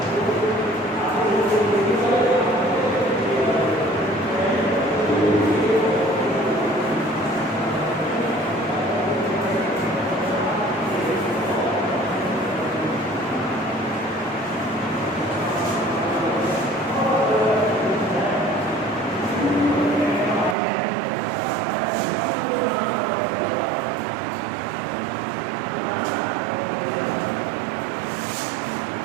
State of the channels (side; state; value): left; drops out; at 20.6 s